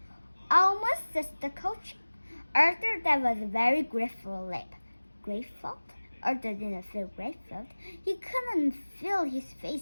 Almost, says the coach. Arthur, that was a very grateful leap. Grateful? Arthur didn't feel grateful. He couldn't feel his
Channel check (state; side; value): inverted; both; correlation -1.00